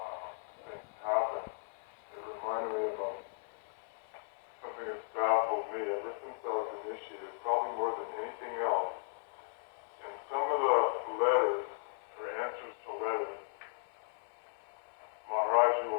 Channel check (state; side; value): silent; right; 53 dB below the other